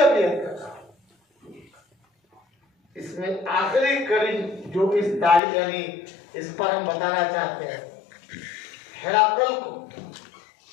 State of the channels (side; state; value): right; drops out; at 5.4 s